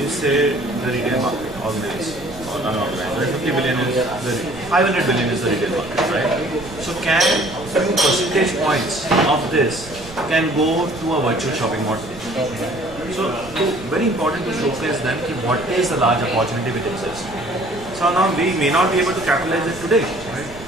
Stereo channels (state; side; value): noise; right; rumble, 17 dB below the sound